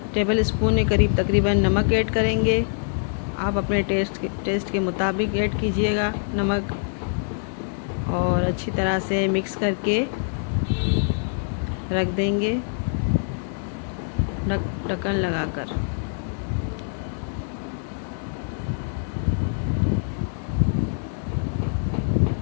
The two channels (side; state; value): right; silent; digital silence